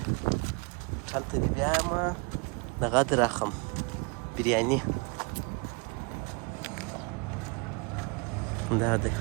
هوټل ته دې بیایم دغه دې راخم بریاني. دا دی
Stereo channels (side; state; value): left; quieter; 31.0 dB